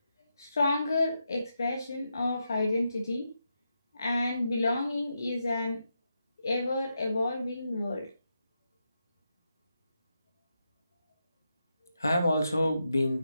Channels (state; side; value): inverted; both; correlation -0.85